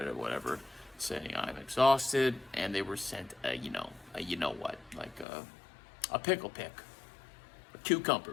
whatever, saying I'm exhausted, and they were sent a you know what, like a pickle pick, a cucumber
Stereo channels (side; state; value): right; drops out; at 5.2 s